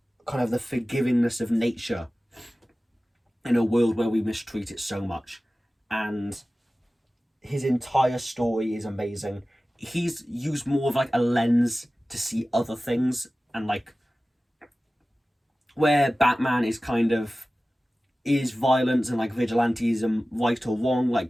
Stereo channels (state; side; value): normal; both; correlation 0.96